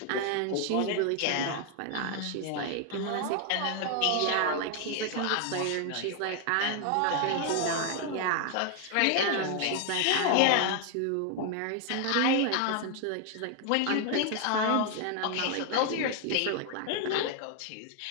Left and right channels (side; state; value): both; different; correlation 0.00